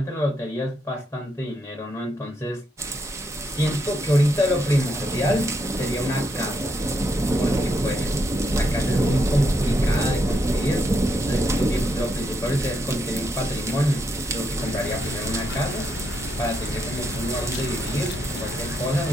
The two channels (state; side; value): normal; both; correlation 0.79